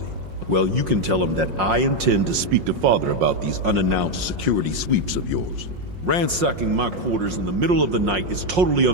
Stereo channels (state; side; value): late; left; 5.6 ms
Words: Well, you can tell him that I intend to speak to Father about these unannounced security sweeps of yours. Ransacking my quarters in the middle of the night is totally